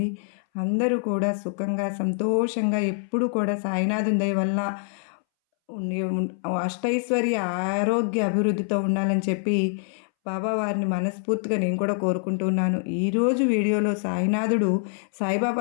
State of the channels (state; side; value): silent; right; 62 dB below the other